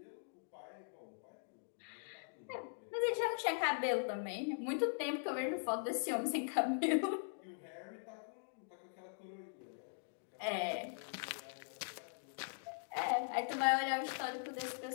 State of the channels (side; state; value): right; silent; digital silence